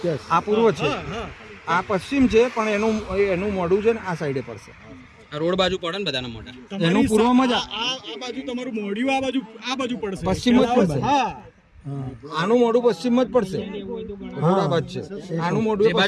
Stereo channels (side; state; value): both; identical; correlation 1.00